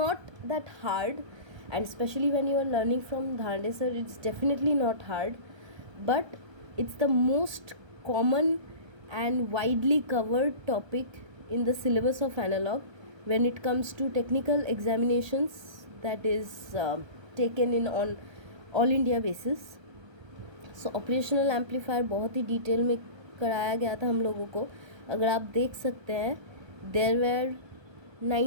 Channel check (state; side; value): late; left; 1.3 ms